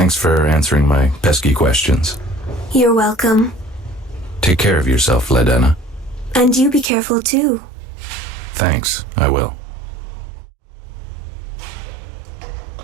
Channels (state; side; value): drops out; left; at 6.9 s